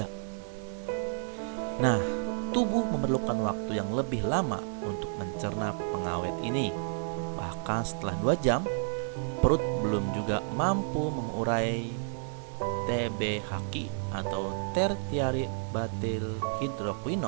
Nah, tubuh memerlukan waktu yang lebih lama untuk mencerna pengawet ini. Bahkan setelah 2 jam, perut belum juga mampu mengurai TBHQ atau tertiary butyl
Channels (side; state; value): left; silent; 57 dB below the other